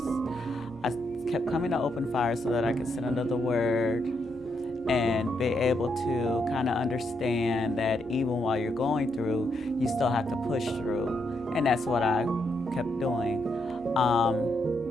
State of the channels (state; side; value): normal; both; correlation 0.79